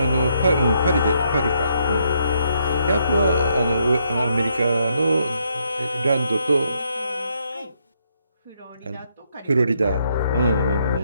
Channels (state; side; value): inverted; both; correlation -0.75